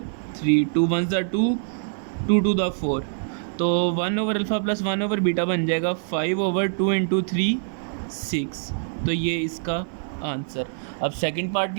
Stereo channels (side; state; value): left; silent; 59 dB below the other